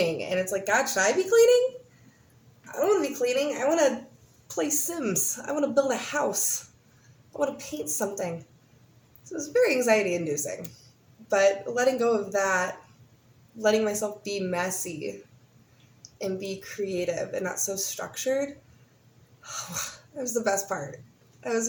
And it's like, God, should I be cleaning? I don't want to be cleaning. I want to play Sims. I want to build a house. I want to paint something. So it was very anxiety inducing. But letting go of that, letting myself be messy and be creative and not so structured, that was the best part. That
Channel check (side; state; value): both; identical; correlation 1.00